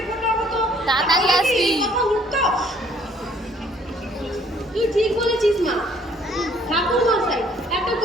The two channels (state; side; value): normal; both; correlation 0.61